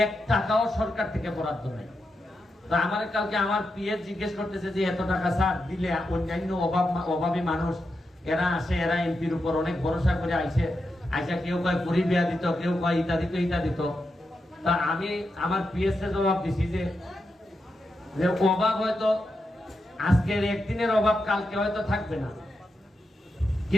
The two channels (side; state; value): both; normal; correlation 0.87